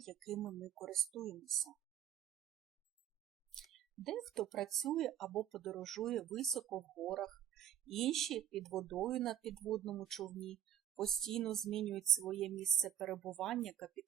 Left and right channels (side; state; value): left; quieter; 10.4 dB